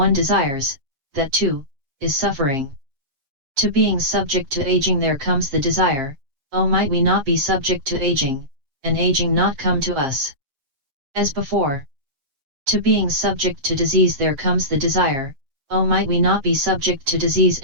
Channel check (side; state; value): left; late; 7.6 ms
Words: desires, that too, is suffering. To being subject to aging there comes the desire, oh might we not be subject to aging, and aging not come to us. As before. To being subject to disease there comes the desire, oh might we not be subject to disease